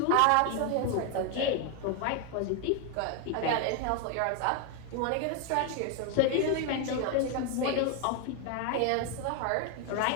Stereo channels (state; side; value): different; both; correlation 0.01